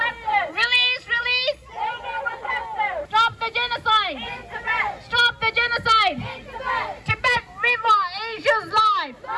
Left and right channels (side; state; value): both; identical; correlation 1.00